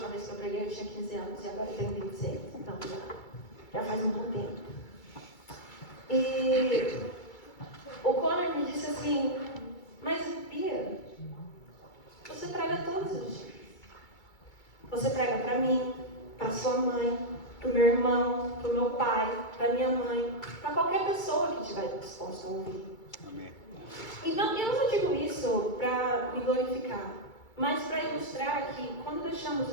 vez que eu preguei eu tinha 15 anos e agora eu tenho 26, então já faz um bom tempo. E o Conor me disse assim: mas Bia, você prega todos os dias. Você prega para mim, para sua mãe, para o meu irmão, para o meu pai, para minha mãe, para qualquer pessoa que estiver disposta a ouvir. Amém. E não, eu não digo isso para me glorificar, mas para ilustrar que quando deixamos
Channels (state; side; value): late; right; 2.3 ms